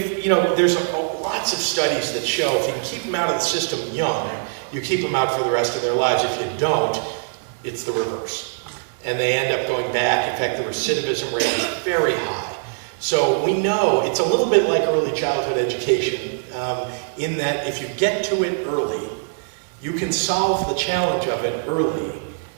there's lots of studies that show if you can keep them out of the system young, you keep them out for the rest of their lives. If you don't, it's the reverse. And they end up going back. In fact, the recidivism rate is very high. So we know it's a little bit like early childhood education, in that if you get to it early, you can solve the challenge of it early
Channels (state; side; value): silent; left; digital silence